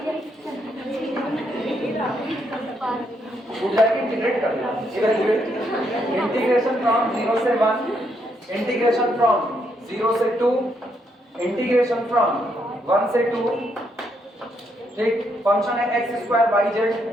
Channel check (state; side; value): normal; both; correlation 0.76